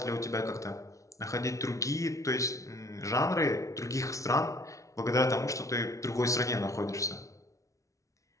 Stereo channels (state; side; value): late; right; 0.15 ms